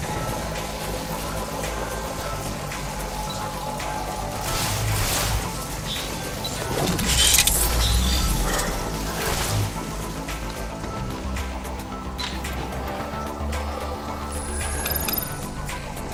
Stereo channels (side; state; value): both; identical; correlation 1.00